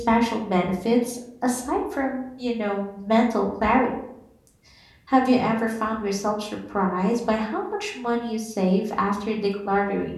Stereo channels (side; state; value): both; identical; correlation 1.00